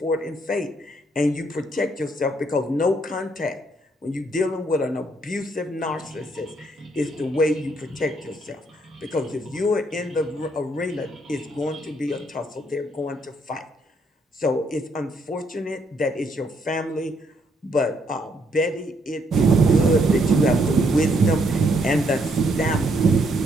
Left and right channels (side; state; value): both; normal; correlation 0.72